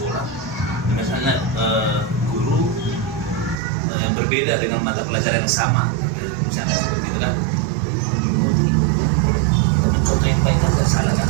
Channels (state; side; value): drops out; left; at 3.6 s